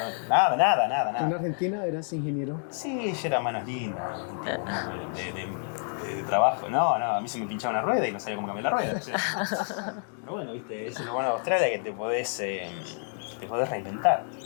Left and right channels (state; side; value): silent; right; 59 dB below the other